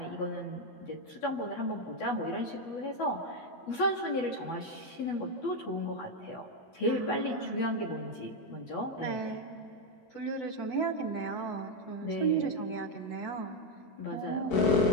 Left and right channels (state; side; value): late; right; 12 ms